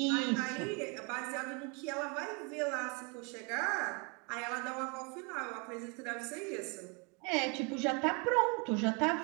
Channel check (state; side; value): quieter; left; 32.4 dB